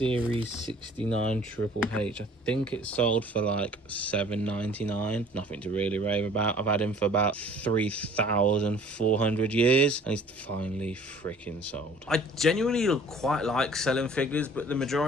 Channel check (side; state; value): both; normal; correlation 0.51